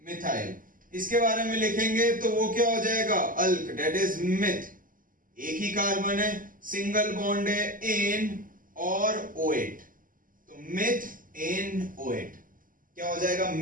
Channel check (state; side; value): late; left; 0.40 ms